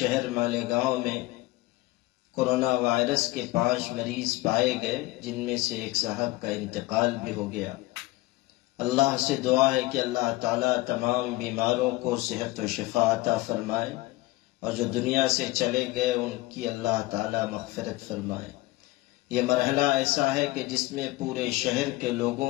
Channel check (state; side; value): quieter; right; 19.5 dB